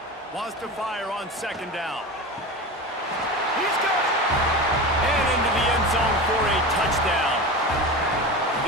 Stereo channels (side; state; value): both; normal; correlation 0.28